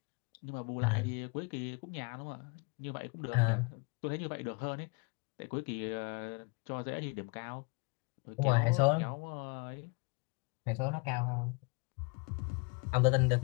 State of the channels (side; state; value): right; quieter; 30.2 dB